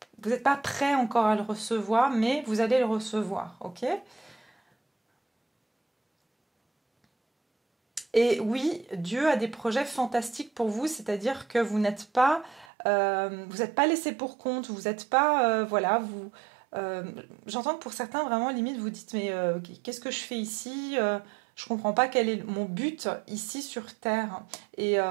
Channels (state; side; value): drops out; left; at 12.7 s